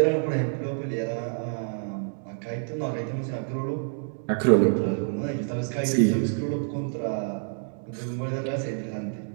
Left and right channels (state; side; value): silent; left; digital silence